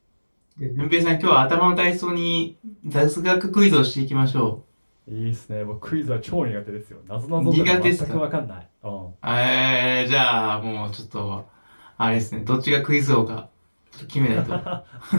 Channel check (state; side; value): inverted; both; correlation -1.00